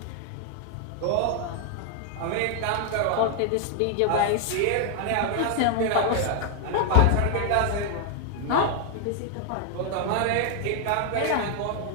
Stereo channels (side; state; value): both; different; correlation 0.00